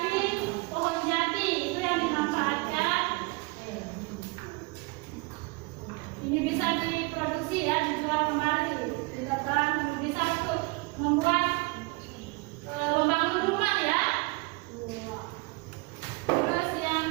pohon jati itu yang dimanfaatkan. Ini bisa diproduksi ya, dijual kembali, ditebang, bisa untuk membuat membangun rumah ya. Terus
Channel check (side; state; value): left; quieter; 26.4 dB